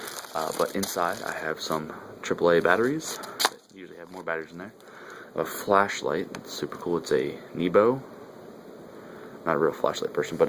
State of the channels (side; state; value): both; identical; correlation 1.00